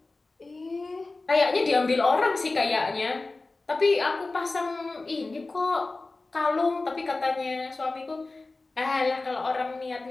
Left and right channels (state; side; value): quieter; right; 3.4 dB